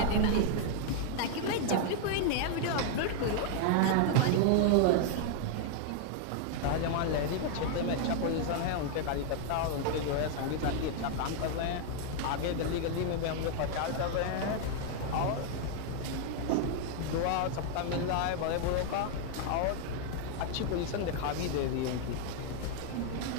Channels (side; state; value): both; different; correlation 0.00